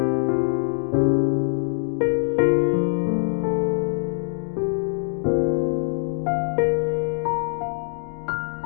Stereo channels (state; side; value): silent; right; digital silence